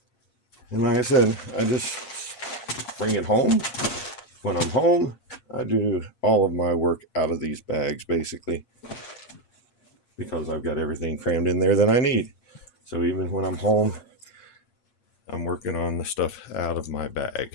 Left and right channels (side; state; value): right; late; 7.5 ms